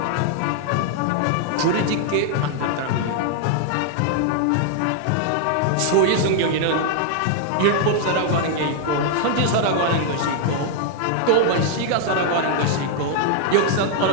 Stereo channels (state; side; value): different; both; correlation 0.00